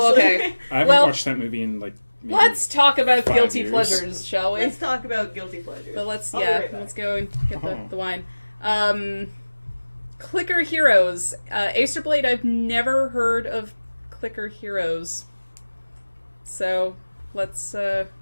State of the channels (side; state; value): both; inverted; correlation -1.00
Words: honestly. okay. I haven't Well- watched that movie in like. Maybe Let's talk about 5 guilty years. pleasures, shall we? Let's talk about guilty pleasures. But let's, I'll be right back. let's go and get Oh. the wine. Clicker Heroes. Acerblade, I've never heard of Clicker Heroes. So, let's, Yeah,